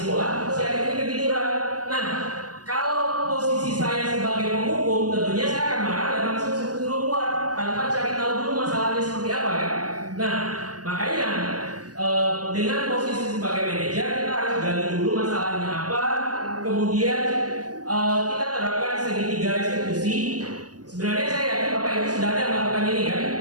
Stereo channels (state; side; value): late; left; 0.68 ms